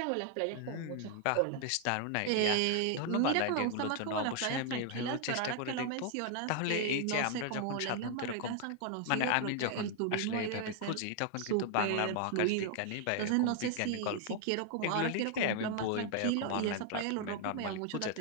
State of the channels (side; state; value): both; different; correlation 0.00